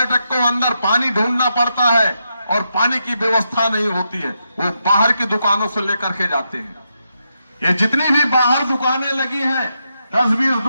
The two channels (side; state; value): both; inverted; correlation -0.83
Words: को अंदर पानी ढूंढना पड़ता है और पानी की व्यवस्था नहीं होती है, वो बाहर की दुकानों से लेकर के जाते हैं। ये जितनी भी बाहर दुकानें लगी हैं, 10-20